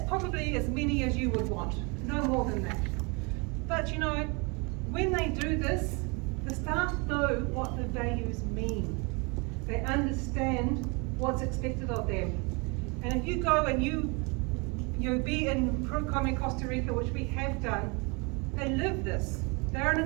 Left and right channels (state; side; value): quieter; left; 30.3 dB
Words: probably as many as you would want, no more than that. But you know, when they do this, the staff know what the values mean. They understand what's expected of them. And if you go and you be in Procom Costa Rica, which we have done, they live this. They're an